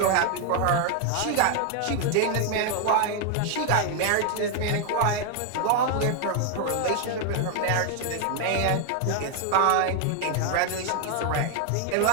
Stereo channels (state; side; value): different; both; correlation 0.00